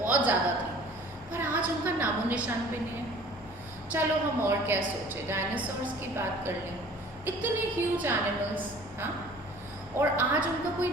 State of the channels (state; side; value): normal; both; correlation 0.49